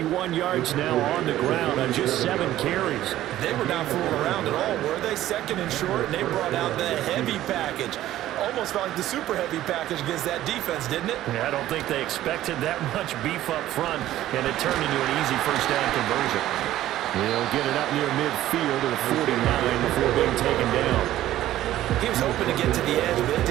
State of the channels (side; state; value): left; quieter; 13.9 dB